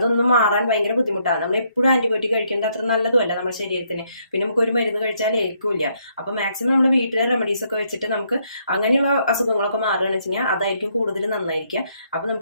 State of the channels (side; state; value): both; inverted; correlation -0.72